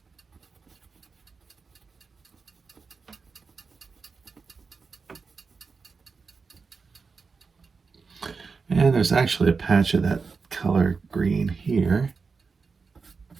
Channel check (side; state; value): left; quieter; 4.8 dB